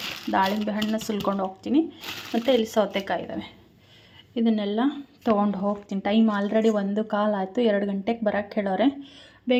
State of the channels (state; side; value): identical; both; correlation 1.00